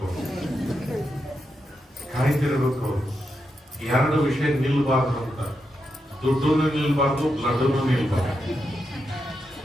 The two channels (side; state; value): both; normal; correlation 0.85